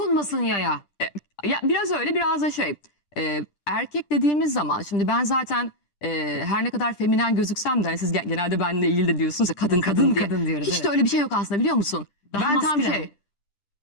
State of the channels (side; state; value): right; late; 10 ms